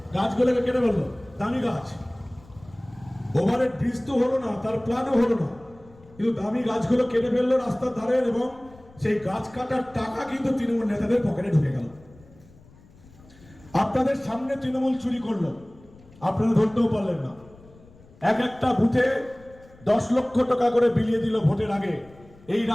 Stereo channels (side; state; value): left; noise; rumble, 25 dB below the sound